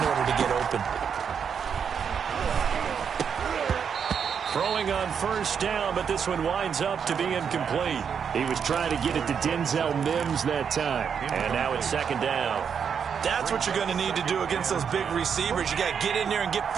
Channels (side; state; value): left; quieter; 7.1 dB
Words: order to get open. Throwing on first down, but this one winds up to be incomplete. He was trying to get it to Denzel Mims that time. And now it's second down. That's what you're going to need to do against those big receivers. You got to get in there and get